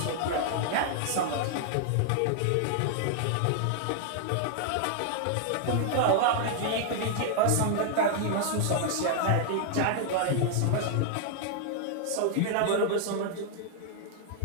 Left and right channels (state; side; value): different; both; correlation 0.00